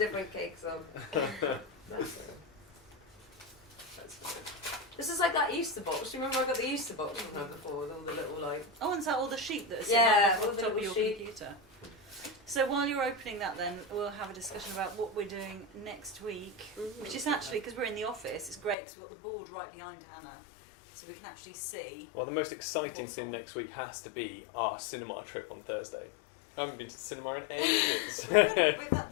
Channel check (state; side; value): drops out; right; at 18.8 s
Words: cakes on. Bless her. That's good. This is like that Easter box. Do you remember I got the Easter box from her before with all the little, like... Oh, and is that all the sheet that is Yeah, on all the the top of little your sheet. computer? So while you're opening that then, we'll have a discussion about what we're doing next week, which is actually, because we're in the office, it's great because we've got the board right behind Hannah. so we can actually see. Well, the most exciting What's thing on? next week has to be our cinema trip on Thursday. I haven't been to the cinema in ages.